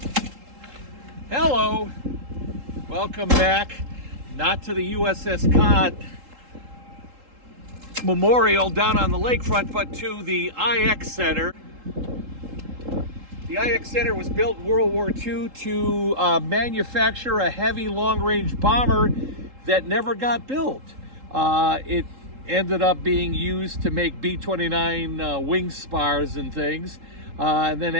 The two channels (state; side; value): late; left; 3.8 ms